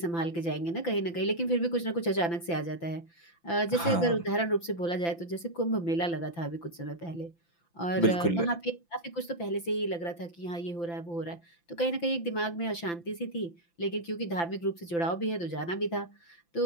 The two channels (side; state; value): right; late; 5.9 ms